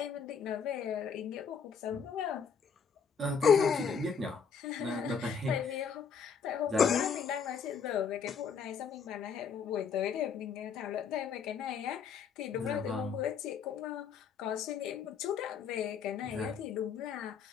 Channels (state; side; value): quieter; right; 6.4 dB